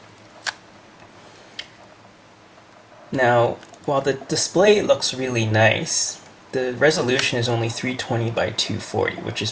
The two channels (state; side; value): identical; both; correlation 1.00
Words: Now, while the display looks really nice, the resolution is only 320 by 240, which is